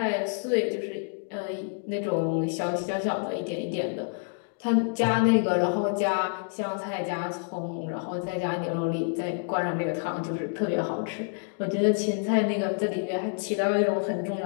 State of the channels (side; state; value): right; silent; 59 dB below the other